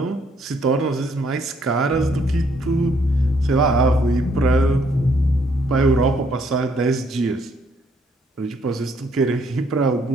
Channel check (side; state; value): both; normal; correlation 0.68